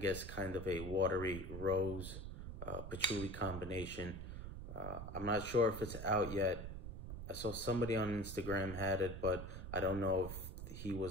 kind of a watery rose patchouli combination. I'm not sure if it's out yet. I saw somebody on Instagram had it, but I don't know if he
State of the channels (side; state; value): right; noise; rumble, 8 dB below the sound